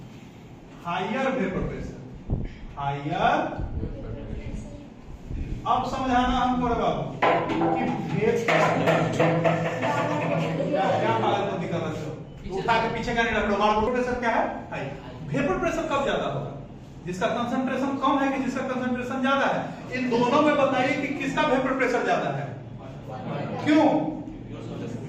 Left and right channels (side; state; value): both; identical; correlation 1.00